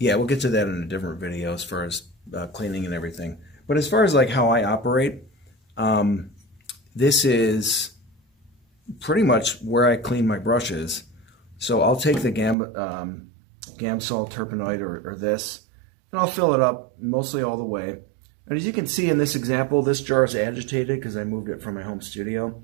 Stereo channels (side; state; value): left; drops out; at 12.6 s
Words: we'll get to that in a different video as far as cleaning and everything. But as far as like how I operate, this is pretty much where I clean my brushes. So I'll take the Gamsol Terpenoid or this, and I'll fill it up mostly all the way. And as you can see in this example, this jar is agitated because I moved it from my home studio.